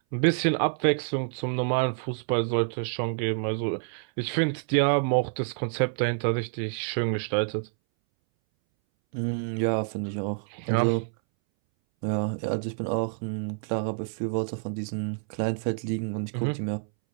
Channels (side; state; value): left; silent; 60 dB below the other